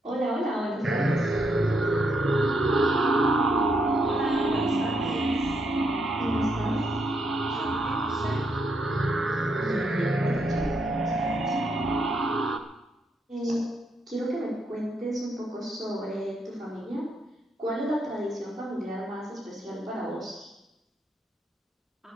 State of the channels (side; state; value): both; normal; correlation 0.77